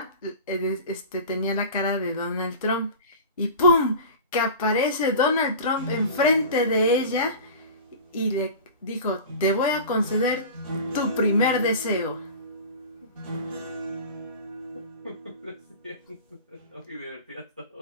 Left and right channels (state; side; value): inverted; both; correlation -0.35